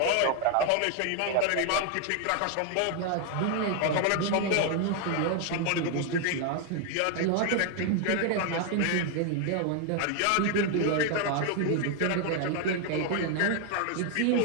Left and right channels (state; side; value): different; both; correlation 0.01